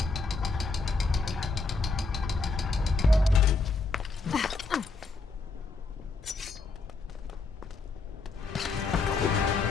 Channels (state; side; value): quieter; right; 3.9 dB